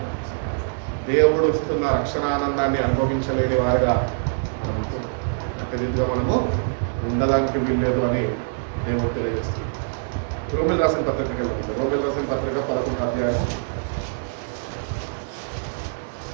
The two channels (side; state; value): left; silent; digital silence